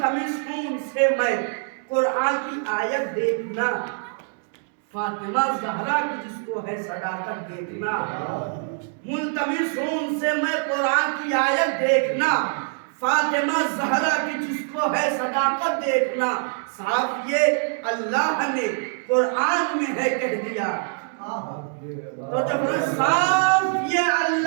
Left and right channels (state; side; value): silent; left; 59 dB below the other